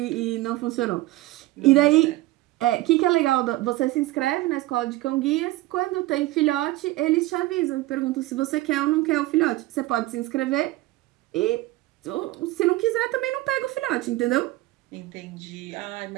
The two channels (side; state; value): left; quieter; 18.1 dB